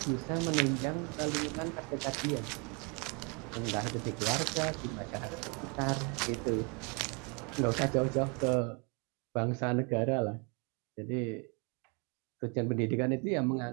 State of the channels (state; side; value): quieter; left; 32.9 dB